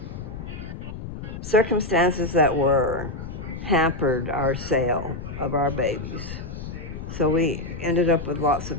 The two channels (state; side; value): noise; left; rumble, 9 dB below the sound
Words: circumstances that were hampered our sale of our babies. So we ended up with lots of